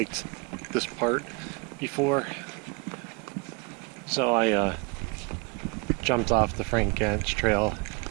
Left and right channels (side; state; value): left; quieter; 28.3 dB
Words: this part before, so I jumped off the Frank Gans Trail,